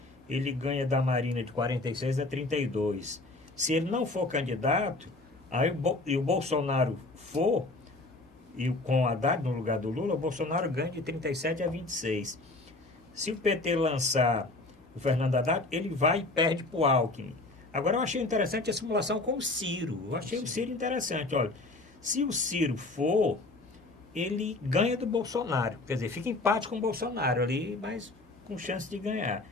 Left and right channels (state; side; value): quieter; right; 3.0 dB